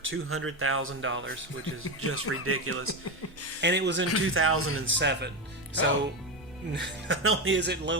which is just ridiculous. And it was in 2007. So not only is it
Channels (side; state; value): both; normal; correlation 0.14